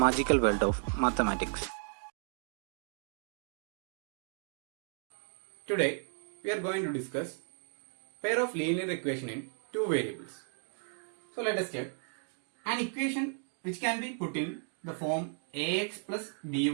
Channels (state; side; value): silent; left; 55 dB below the other